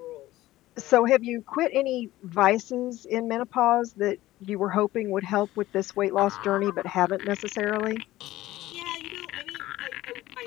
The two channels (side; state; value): right; quieter; 16.2 dB